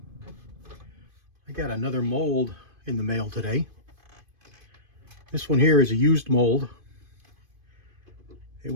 I got another mold in the mail today. This one here is a used mold. It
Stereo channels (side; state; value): left; late; 2.5 ms